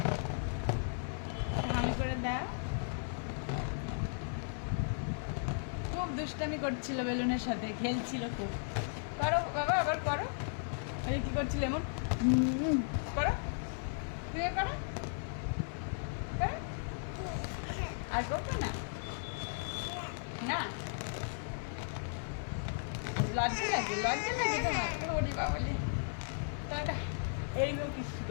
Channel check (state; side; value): silent; right; 54 dB below the other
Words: হামি করে দাও। খুব দুষ্টামি করছিল বেলুনের সাথে, খেলছিল খুব। করো বাবা, আবার করো। এই কি করছিল এমন? করো, তুই করো, আর করবো না। না লজ্জা লাগে, লজ্জা লাগে তোমার? ওরে বাবালে, তাহলে এইরকম কিছু